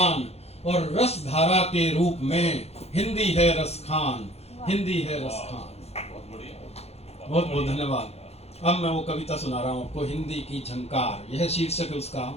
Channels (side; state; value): right; late; 0.30 ms